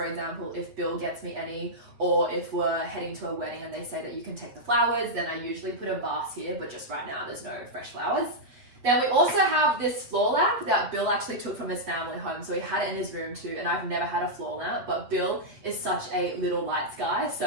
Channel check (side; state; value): left; late; 8.3 ms